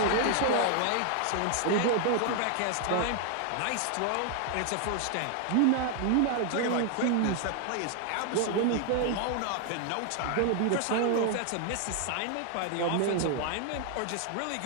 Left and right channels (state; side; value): different; both; correlation 0.00